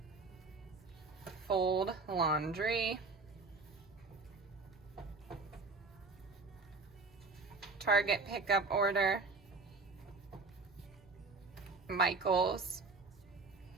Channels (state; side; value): quieter; left; 3.8 dB